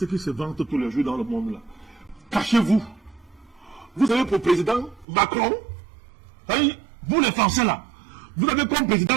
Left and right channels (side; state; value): left; drops out; at 5.1 s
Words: qui se vantent tous les jours dans le monde là. Cachez-vous. Vous avez pour président Macron. Vous les Français là, vous avez comme